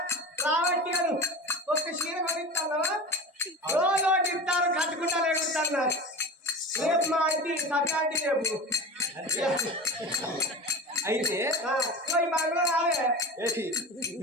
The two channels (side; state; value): both; normal; correlation 0.31